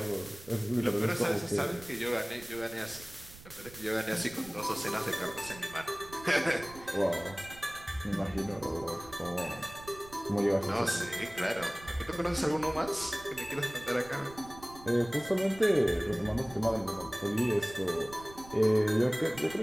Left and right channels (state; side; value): noise; right; rumble, 18 dB below the sound